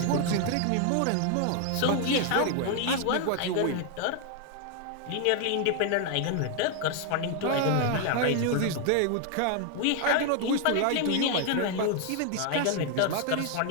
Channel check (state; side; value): different; both; correlation 0.00